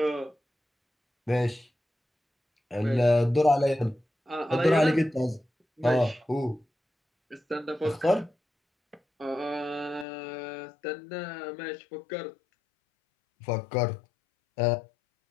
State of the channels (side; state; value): right; drops out; at 10.1 s